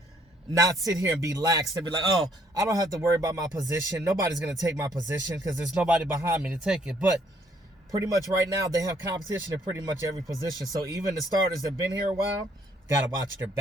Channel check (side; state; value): both; normal; correlation 0.66